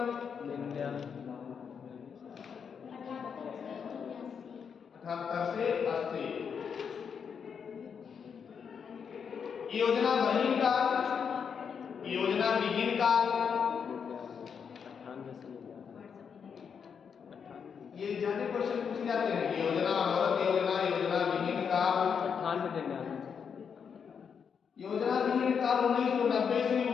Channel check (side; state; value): right; quieter; 6.8 dB